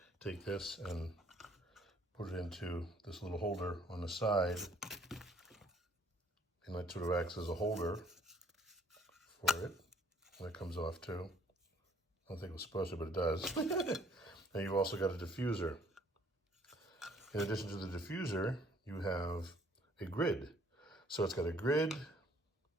take this and put it into this little holder on the side. And that sort of acts as a holder for it. And it comes off too. I don't think it was supposed to, but it does. And you've also got a diffuser. In addition to the diffuser, you have a grid. So it's got a grid,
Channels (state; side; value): normal; both; correlation 0.60